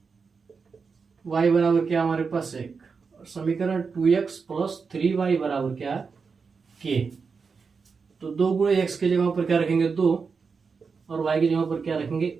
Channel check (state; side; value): quieter; left; 5.2 dB